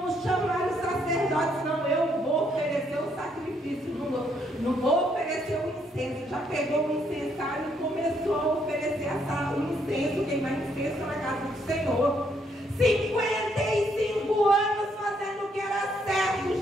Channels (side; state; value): both; normal; correlation 0.72